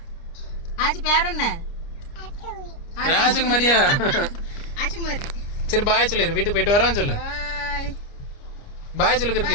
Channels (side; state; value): right; late; 29 ms